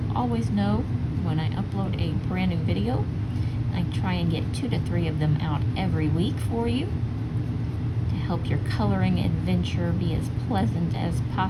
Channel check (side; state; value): both; identical; correlation 1.00